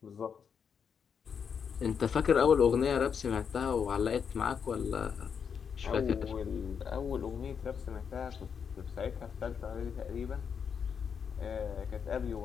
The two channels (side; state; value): right; quieter; 6.9 dB